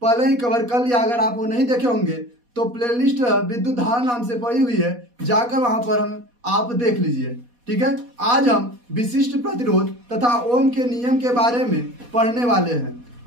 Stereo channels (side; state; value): left; late; 4.2 ms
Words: पहले ही कवर कर लिया। अगर आप वो नहीं देखे होंगे तो प्लेलिस्ट विद्युत धारा नाम से पड़ी हुई है, जाकर वहां पर आप देख लीजिए। ठीक है, आज हम विशिष्ट प्रतिरोध तथा ओम के नियम के बारे में पढ़ने वाले हैं।